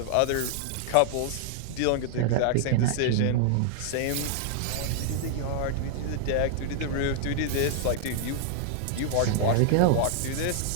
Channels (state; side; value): different; both; correlation -0.01